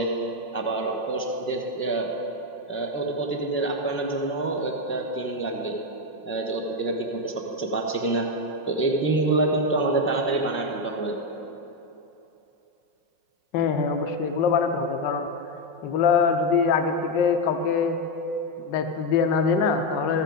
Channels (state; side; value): late; right; 5.5 ms